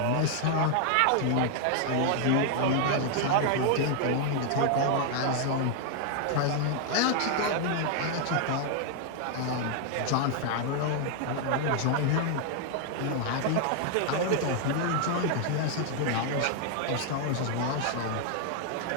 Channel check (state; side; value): different; both; correlation 0.00